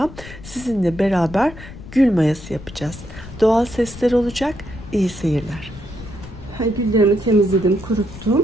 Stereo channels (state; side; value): noise; left; rumble, 15 dB below the sound